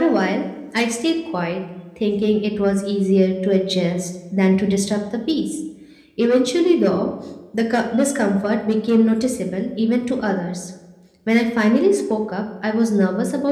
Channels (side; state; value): both; identical; correlation 1.00